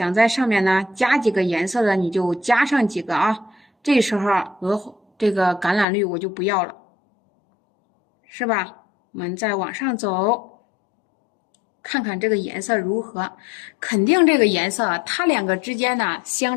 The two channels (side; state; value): right; drops out; at 5.9 s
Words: 在上面呢加几个颜色的，你就加上几个啊。这时候这个橄榄绿我就不要了，是吧？我们再往上走。看看这个颜色如何，肯定这个颜色它两个之间呢